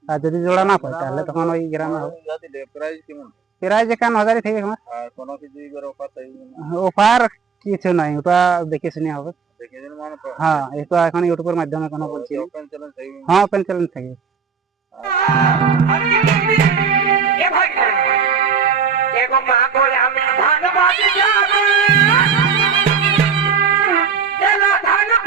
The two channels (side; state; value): left; quieter; 6.1 dB